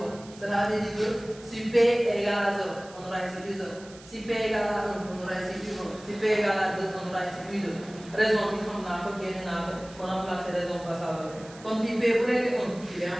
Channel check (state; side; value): noise; right; hiss, 21 dB below the sound